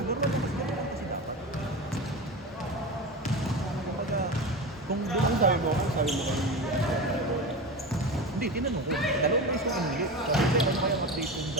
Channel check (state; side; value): normal; both; correlation 0.25